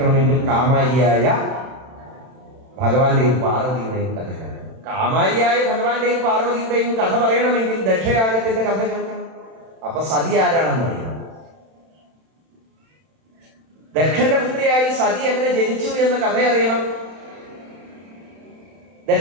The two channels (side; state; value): left; late; 31 ms